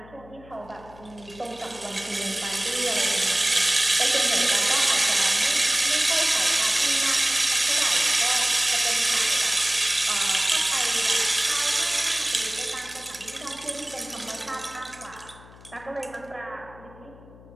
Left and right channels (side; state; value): left; noise; hum, 22 dB below the sound